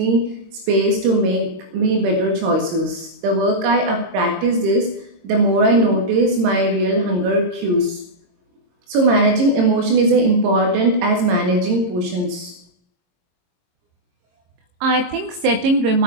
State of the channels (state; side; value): late; left; 22 ms